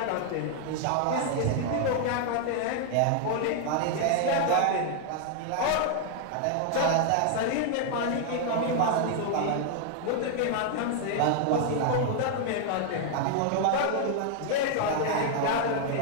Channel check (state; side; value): different; both; correlation 0.00